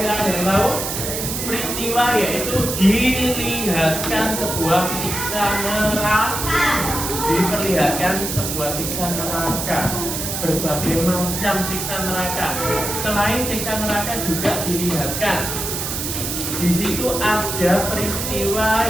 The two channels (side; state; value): right; noise; hiss, 3 dB below the sound